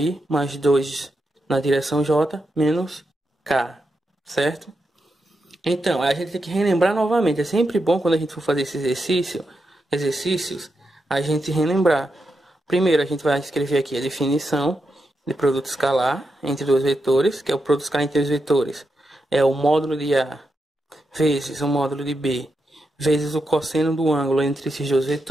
mais 2 na direção J, menos K, certo? Então, a gente tem que relembrar novamente. É sempre bom quando a gente for fazer esse exercícios, a gente relembrar. Primeiro, a gente vai escrever aqui a definição de produto escalar entre dois vetores, que é o produto escalar entre dois vetores. É o módulo de A vezes o módulo de B, vezes o cosseno do ângulo entre esses dois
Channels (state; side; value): normal; both; correlation 0.86